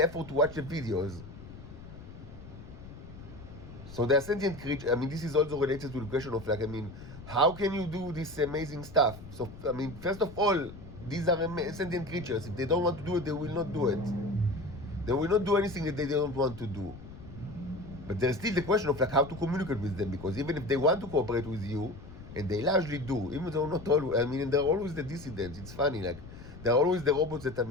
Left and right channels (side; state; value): left; noise; rumble, 15 dB below the sound